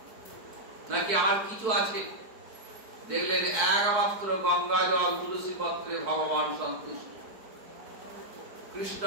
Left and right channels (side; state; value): left; late; 4.6 ms